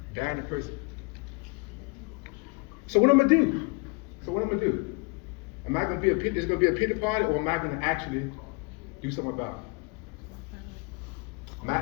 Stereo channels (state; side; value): quieter; right; 29.1 dB